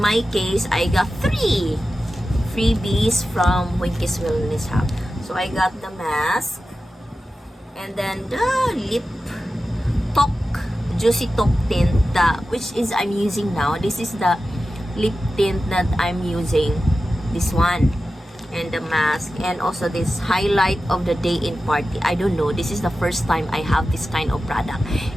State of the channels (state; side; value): normal; both; correlation 0.93